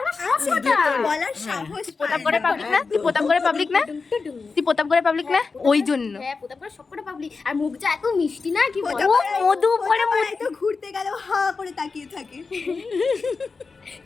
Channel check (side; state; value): right; quieter; 4.5 dB